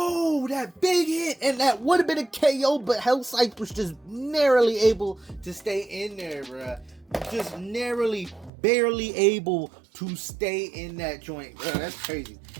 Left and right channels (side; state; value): left; drops out; at 8.5 s